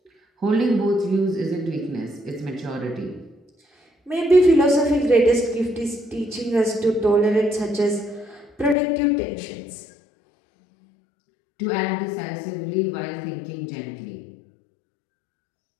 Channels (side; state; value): right; drops out; at 8.8 s